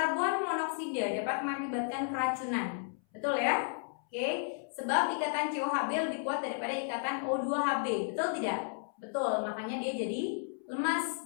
monoksida dapat mengakibatkan keracunan. Betul ya? Oke. Sebab ikatan COHB lebih kuat daripada ikatan O2HB. Betul tidak? Betul, makanya dia jadi lemas.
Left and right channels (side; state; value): right; silent; 56 dB below the other